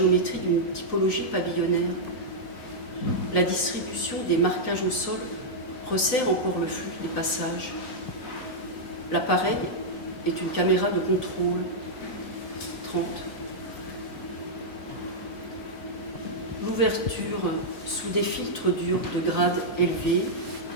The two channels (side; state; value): right; late; 3.9 ms